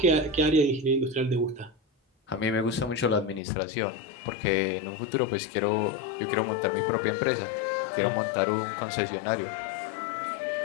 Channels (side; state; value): right; drops out; at 3.4 s